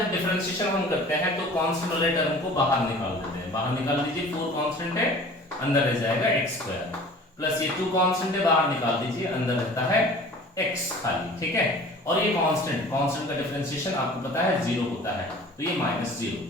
डिफरेंशिएशन हम करते हैं तो कांस्टेंट वाले टर्म को बाहर निकाल देते हैं। बाहर निकाल दीजिए, 4 कांस्टेंट है, अंदर रह जाएगा x स्क्वायर, प्लस ये 2 कांस्टेंट है, बाहर निकाल दीजिए, अंदर रहता है x खाली। ठीक है, और ये कांस्टेंट का डिफरेंशिएशन आपको पता है 0 होता है, तो ये -0,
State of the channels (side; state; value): both; normal; correlation 0.45